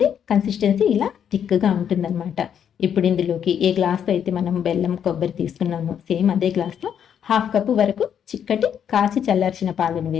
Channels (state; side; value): quieter; right; 8.6 dB